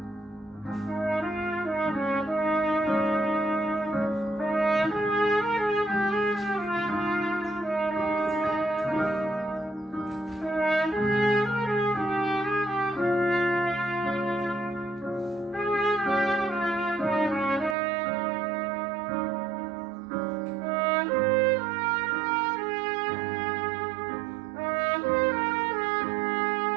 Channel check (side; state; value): left; drops out; at 17.8 s